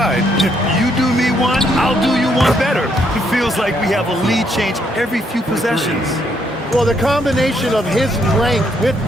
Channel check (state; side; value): normal; both; correlation 0.73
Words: If you do me one, I'll do you one better. It feels like we have a lead change every few possessions. Well, the combination of his length with